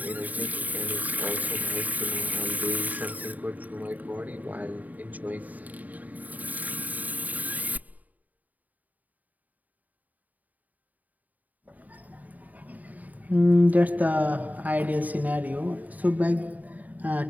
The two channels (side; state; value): left; late; 0.076 ms